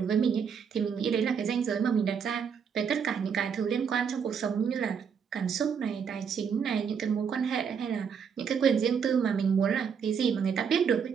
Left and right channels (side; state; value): left; quieter; 6.8 dB